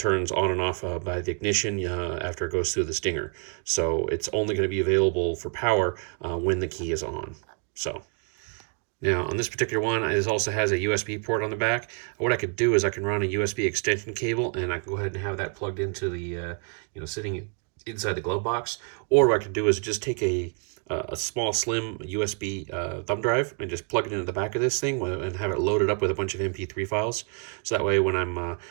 on and off by the ignition after it goes through the stinger. So it's only going to be available for power when the key is on. So. Now, on this particular one, it also has a USB port on the back. What I could do is I can run a USB extension cable, and I can go ahead and have that plugged into the, sitting inside the glove box. Or what I could do is just take a small, slim USB thumb drive and just plug it into the back of this thing and have it loaded up with a bunch of MP3 files. So that way, when I'm out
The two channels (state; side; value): quieter; left; 39.3 dB